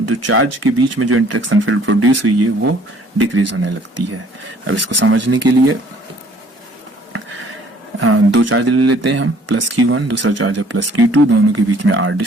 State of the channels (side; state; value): both; normal; correlation 0.58